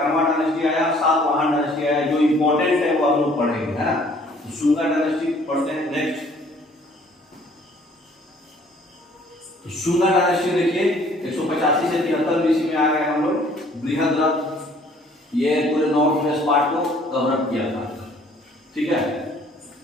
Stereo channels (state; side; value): normal; both; correlation 0.58